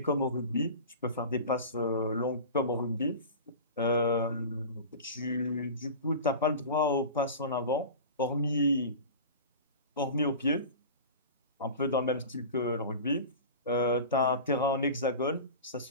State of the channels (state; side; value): inverted; both; correlation -0.33